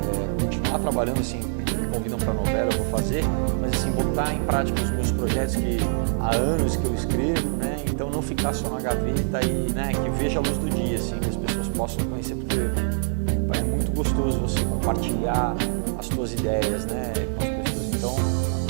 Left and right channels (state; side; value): silent; left; digital silence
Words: continuar trabalhando, assim, me convidam para novela, eu vou fazer, mas assim, botar em prática os meus projetos que há anos que eu escrevo, né? Então não ficar só na gaveta e, né, que veja a luz do dia, assim, que as pessoas possam conhecer, porque é muito gostoso você compartilhar as suas ideias, né, com as pessoas. Então,